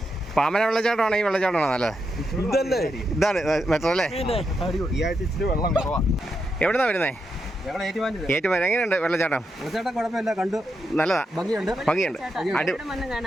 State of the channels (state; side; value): normal; both; correlation 0.84